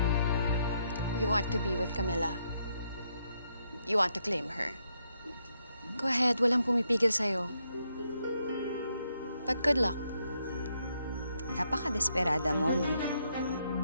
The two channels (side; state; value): both; inverted; correlation -0.77